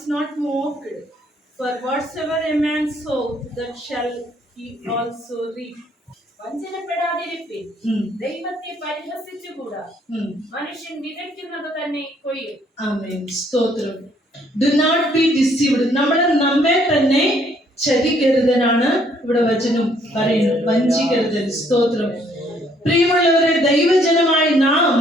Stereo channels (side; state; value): both; normal; correlation 0.66